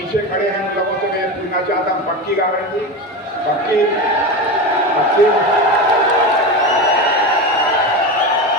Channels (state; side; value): normal; both; correlation 0.22